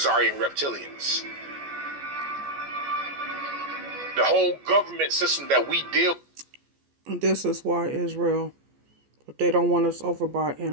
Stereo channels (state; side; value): late; left; 14 ms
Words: reptilians. The whole government system that we deal with. This is why Israel, but they don't want us over by